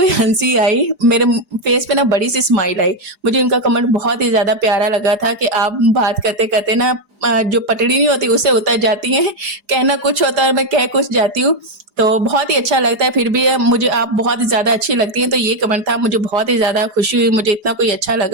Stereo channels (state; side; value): late; left; 4.8 ms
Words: हँसी आई, मेरे फेस पे ना बड़ी-सी स्माइल आई। मुझे उनका कमेंट बहुत ही ज़्यादा प्यारा लगा था कि आप बात करते-करते ना जो पटड़ी नहीं होती उससे उतर जाती हैं, कहना कुछ होता है और मैं कह कुछ जाती हूँ। तो बहुत ही अच्छा लगता है, फिर भी मुझे आप बहुत ही ज़्यादा अच्छी लगती हैं, तो ये कमेंट था, मुझे बहुत ही ज़्यादा खुशी हुई, मुझे इतना कोई अच्छा